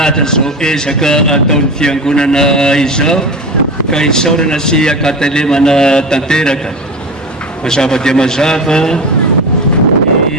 zao ezaka ataon'ny fiangonana izao ka isaorana sy akatelemana tanteraka. Mazava dia mazava ny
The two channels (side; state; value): both; normal; correlation 0.27